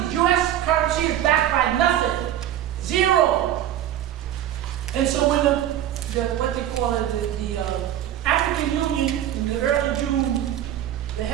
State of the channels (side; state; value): left; quieter; 11.7 dB